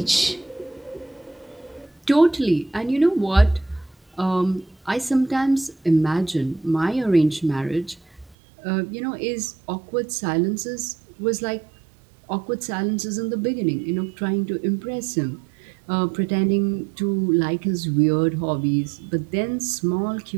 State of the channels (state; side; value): drops out; left; at 8.3 s